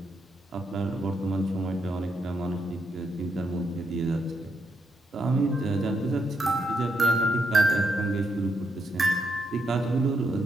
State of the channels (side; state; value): both; normal; correlation 0.79